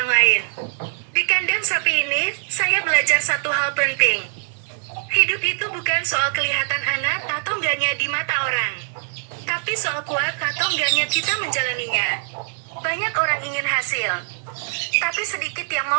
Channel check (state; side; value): silent; left; 60 dB below the other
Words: lain. Di kandang sapi ini, saya belajar satu hal penting. Hidup itu bukan soal kelihatan anak atau enggaknya di mata orang. Tapi soal kuat atau enggaknya kita menjalaninya. Banyak orang ingin hasil. Tapi sedikit yang